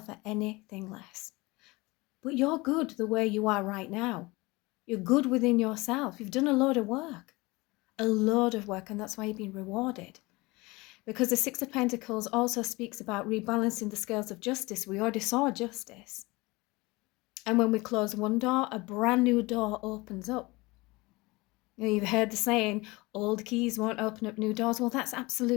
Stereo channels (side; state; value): right; quieter; 23.1 dB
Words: anything less. But you're good the way you are right now. You're good within yourself. You've done a load of work. A load of work, and that's why you've been rewarded. Because the Six of Pentacles also speaks about rebalancing the scales of justice. We already saw justice. And when we close one door, a brand new door opens up. You've heard the saying, old keys won't open up new doors. Well, that's